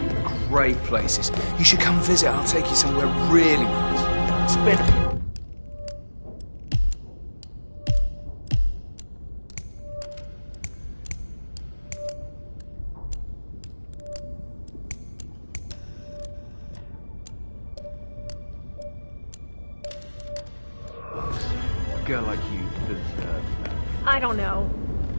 great places. You should come visit. I'll take you somewhere really nice. Spin. A girl like you deserves that. I don't know.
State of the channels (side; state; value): both; inverted; correlation -1.00